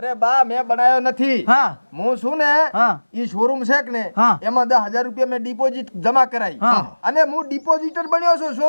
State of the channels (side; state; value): both; inverted; correlation -1.00